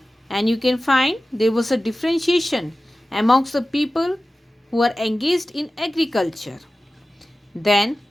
and you can find there was a differentiation amongst the people who are engaged in agriculture. Then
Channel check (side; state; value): both; normal; correlation 0.96